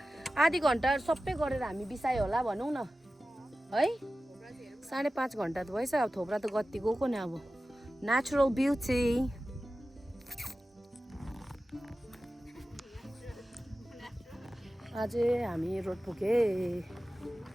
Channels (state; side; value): normal; both; correlation 0.95